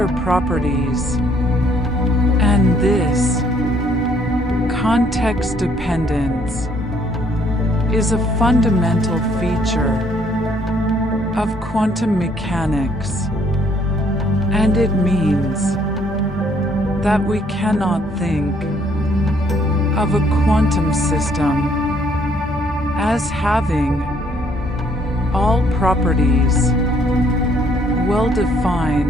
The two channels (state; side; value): normal; both; correlation 0.65